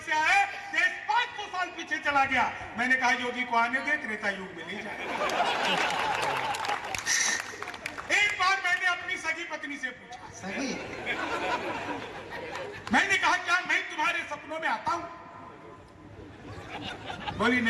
से आए देश 500 साल पीछे चला गया। मैंने कहा योगी को आने दे, त्रेता युग में ले जाए। एक बार मैंने अपनी सगी पत्नी से पूछा, सही मैंने कहा क्या मैं तुम्हारे सपनों में आता हूं? बोली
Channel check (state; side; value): identical; both; correlation 1.00